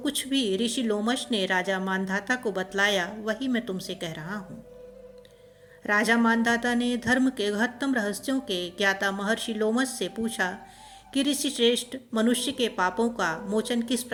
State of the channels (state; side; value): identical; both; correlation 1.00